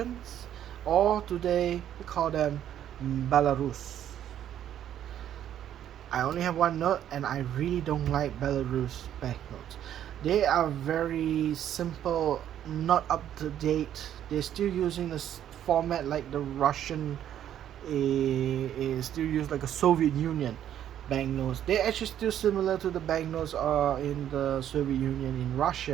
or today we call them Belarus. I only have 1 note, and I really don't like Belarus banknotes. They are very simple, not up to date. They're still using this format like the Russian is still used like a Soviet Union banknotes. They're actually still similar to the banknotes in the Soviet Union in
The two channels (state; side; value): quieter; left; 10.6 dB